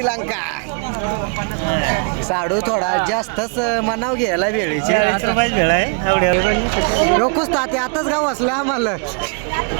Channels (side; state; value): left; quieter; 39.5 dB